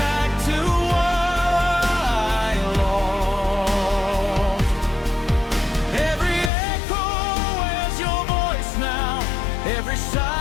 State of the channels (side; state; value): right; drops out; at 6.5 s